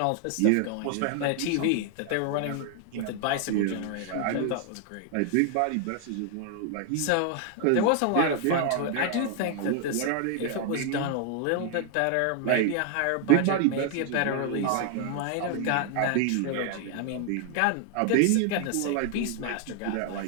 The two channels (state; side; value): different; both; correlation 0.00